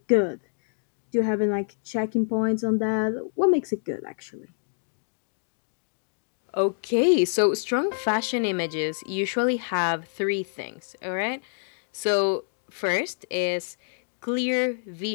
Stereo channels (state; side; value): silent; right; digital silence